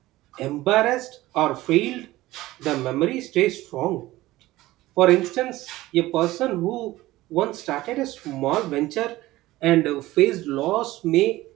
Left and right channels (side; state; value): left; quieter; 17.5 dB